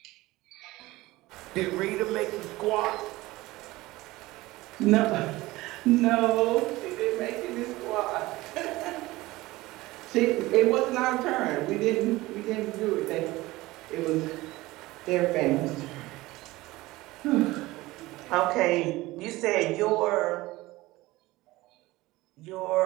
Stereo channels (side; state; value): left; quieter; 19.3 dB